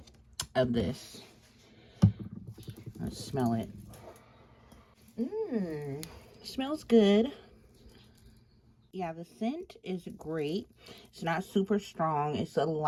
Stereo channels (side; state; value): both; identical; correlation 1.00